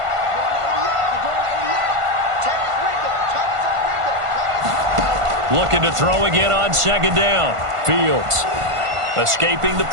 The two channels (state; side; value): late; left; 1.5 ms